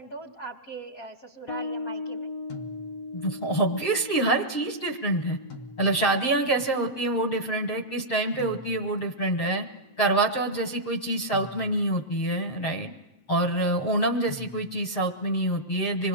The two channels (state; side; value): late; right; 7.6 ms